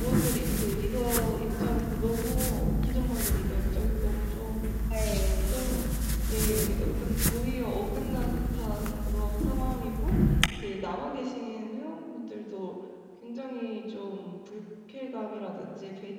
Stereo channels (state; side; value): identical; both; correlation 1.00